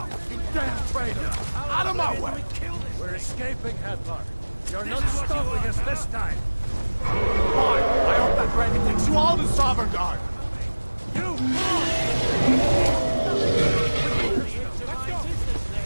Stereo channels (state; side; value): inverted; both; correlation -1.00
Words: you damn traitor! Out of my way! We're escaping, Hadvar. You're not stopping us this time. Fine! I hope that dragon takes you all to Sovereign Guard! You!